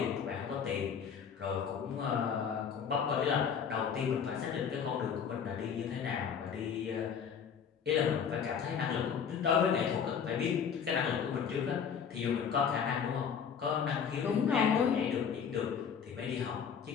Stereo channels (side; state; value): right; quieter; 7.1 dB